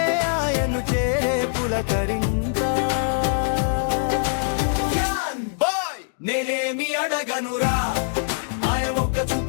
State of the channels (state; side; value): silent; right; digital silence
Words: ఆయన్ను చేరే పులకరింత. నేనేమి అడగనురా, ఆయన ఒక్క